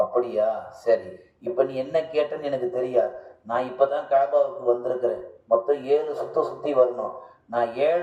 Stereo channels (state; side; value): identical; both; correlation 1.00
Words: அப்படியா, சரி, இப்ப நீ என்ன கேட்டன்னு எனக்கு தெரியாது. நான் இப்பதான் காபாவுக்கு வந்திருக்கிறேன். மொத்தம் 7 சுத்தி வரணும். நான்